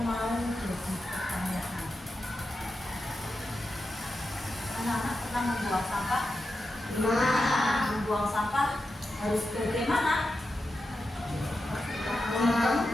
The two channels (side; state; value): both; normal; correlation 0.89